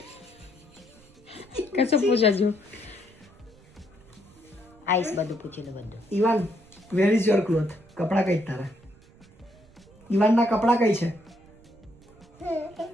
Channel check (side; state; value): right; noise; rumble, 26 dB below the sound